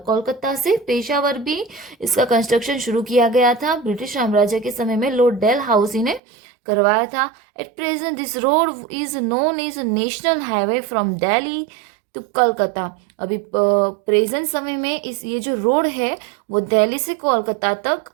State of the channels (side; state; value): left; drops out; at 6.2 s